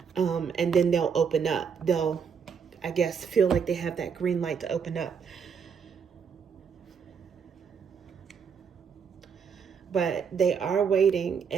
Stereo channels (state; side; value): quieter; left; 6.6 dB